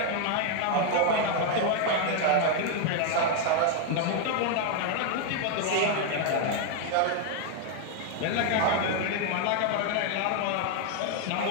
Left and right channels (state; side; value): different; both; correlation 0.00